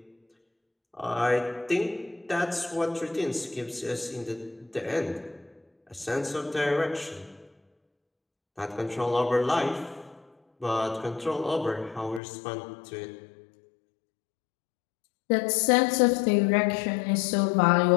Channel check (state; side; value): drops out; right; at 12.2 s